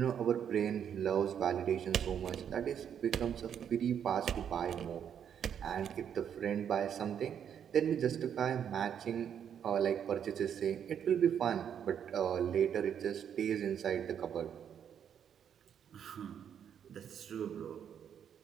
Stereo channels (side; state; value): left; quieter; 8.6 dB